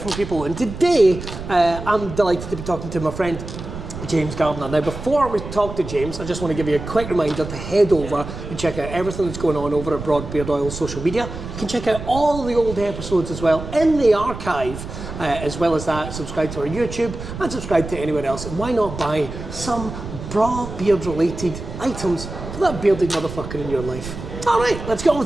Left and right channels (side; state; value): right; noise; rumble, 10 dB below the sound